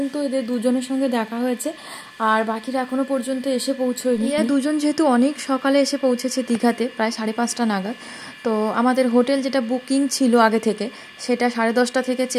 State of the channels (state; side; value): identical; both; correlation 1.00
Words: এদের দুজনের সঙ্গে দেখা হয়েছে আর বাকিরা এখনো পর্যন্ত এসে পৌঁছয়নি। এরা দুজন যেহেতু অনেক সকালে এসে পৌঁছেছে দীঘাতে প্রায় 5:30 নাগাদ, তো আমাদের হোটেল যেটা বুকিং ছিল আগে থেকে সেটা 10:30 থেকে